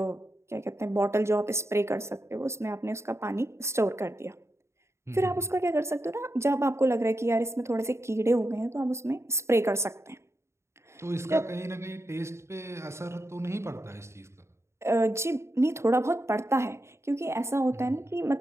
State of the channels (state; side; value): late; left; 0.13 ms